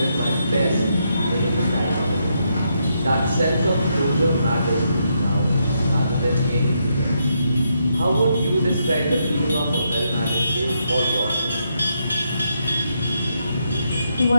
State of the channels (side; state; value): both; inverted; correlation -0.79